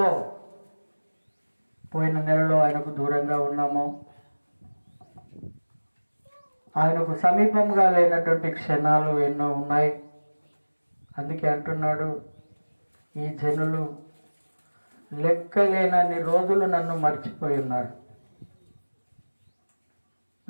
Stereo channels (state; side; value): inverted; both; correlation -1.00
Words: పోయిన నెలలో ఆయనకు దూరంగా ఉన్నామో, ఆయనకు సమీపంగా లేనటువంటి క్షణాలు ఎన్నో ఉన్నాయి. అందుకే అంటున్నాడు, ఈ జనులు లెక్కలేనన్ని రోజులు నన్ను మర్చిపోయి ఉన్నారు.